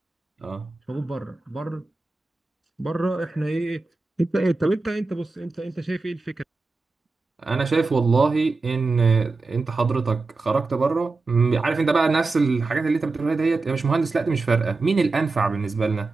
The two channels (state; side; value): quieter; left; 3.7 dB